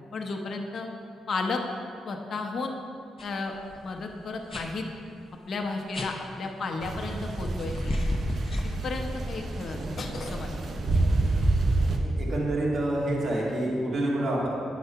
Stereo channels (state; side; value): normal; both; correlation 0.86